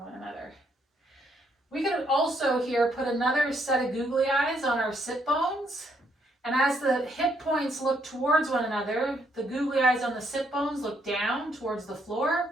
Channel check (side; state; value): both; normal; correlation 0.73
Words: one another. We could also here put another set of googly eyes on our sit bones, and as the hip points look towards one another, the googly eyes on the sit bones look down towards the